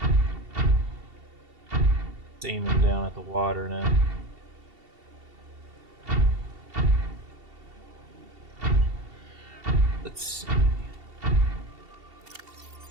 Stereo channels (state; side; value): late; left; 2.7 ms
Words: It's aiming down at the water now. Let's see.